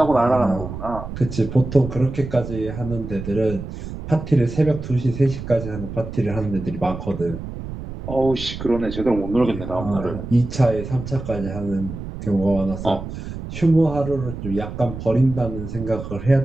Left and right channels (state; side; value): noise; right; rumble, 9 dB below the sound